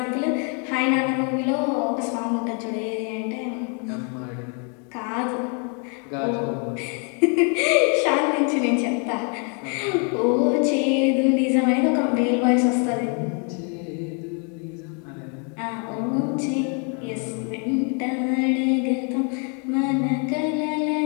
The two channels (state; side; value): quieter; right; 38.5 dB